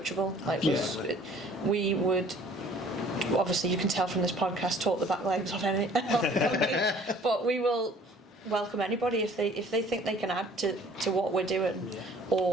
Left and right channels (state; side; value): normal; both; correlation 0.53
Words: We would, obviously you can tell from this podcast, talk the back legs off any, but we will welcome anybody if they think they can add to what we're doing,